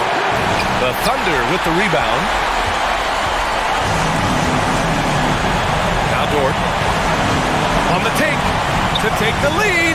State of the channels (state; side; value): identical; both; correlation 1.00